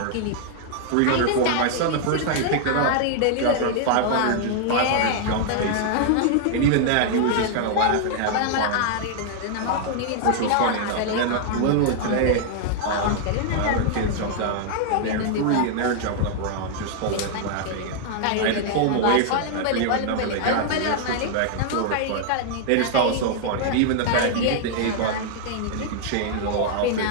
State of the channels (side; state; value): both; different; correlation -0.01